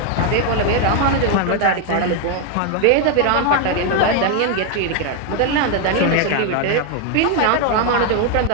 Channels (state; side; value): different; both; correlation 0.01